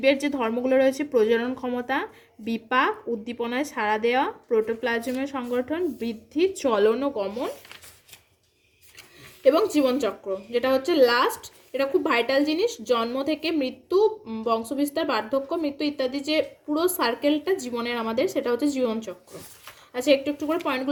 যে ধর্মগুলো রয়েছে, প্রজনন ক্ষমতা, বিপাক, উদ্দীপনায় সাড়া দেওয়া, প্রোটোপ্লাজমের সংগঠন, বৃদ্ধি, চলন ও গমন এবং জীবনচক্র, যেটা হচ্ছে লাস্ট। এটা খুব ভাইটাল জিনিস। জন্ম থেকে মৃত্যু, বংশবিস্তার, বার্ধক্য, মৃত্যু ইত্যাদি যে পুরো সার্কেলটা জীবনের আমাদের, সেটা হচ্ছে জীবনচক্র। আচ্ছা, একটু একটু করে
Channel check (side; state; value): both; identical; correlation 1.00